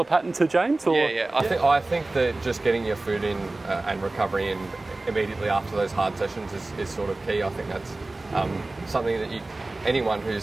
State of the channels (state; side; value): quieter; left; 3.0 dB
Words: pattern to James? Or? Yeah. I think that just getting your food in and recovery in immediately after those hard sessions is sort of key. I think that's something that anyone